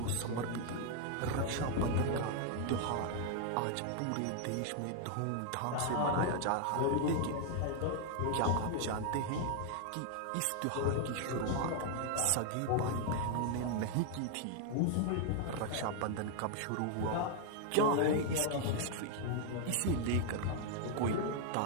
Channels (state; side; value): different; both; correlation 0.00